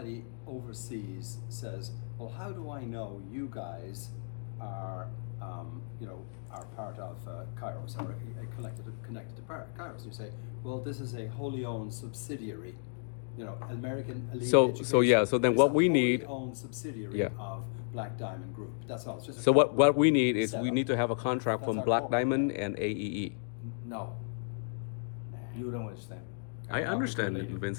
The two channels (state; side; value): silent; right; digital silence